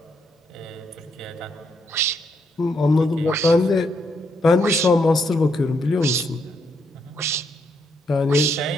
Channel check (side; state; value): both; normal; correlation 0.76